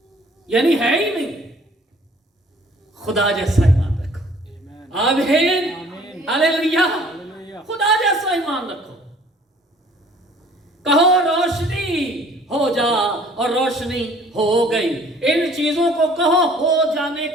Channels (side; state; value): both; normal; correlation 0.54